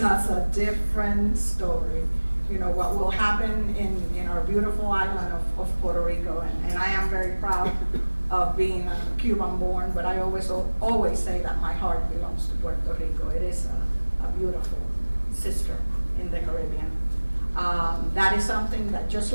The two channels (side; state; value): both; inverted; correlation -1.00